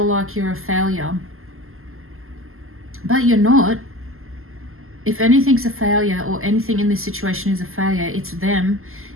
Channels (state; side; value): late; left; 0.62 ms